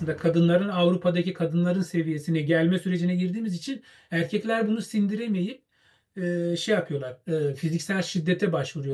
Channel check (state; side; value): identical; both; correlation 1.00